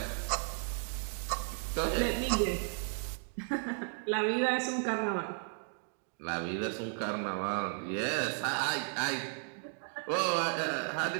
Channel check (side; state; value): left; silent; 55 dB below the other